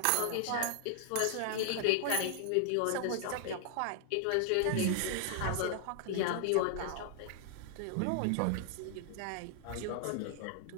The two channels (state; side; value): different; both; correlation 0.00